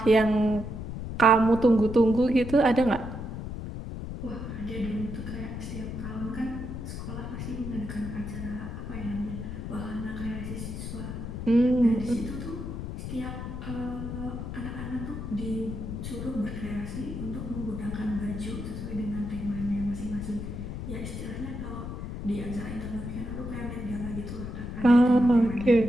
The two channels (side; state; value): left; noise; rumble, 6 dB below the sound